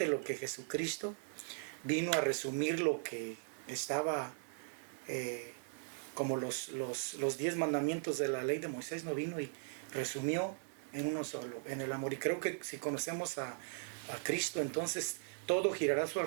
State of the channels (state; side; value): silent; left; digital silence